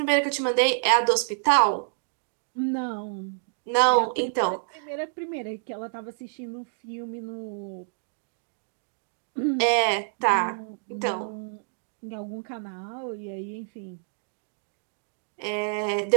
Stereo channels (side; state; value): left; silent; digital silence